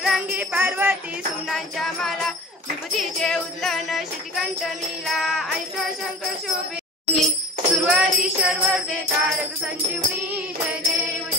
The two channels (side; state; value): both; normal; correlation 0.39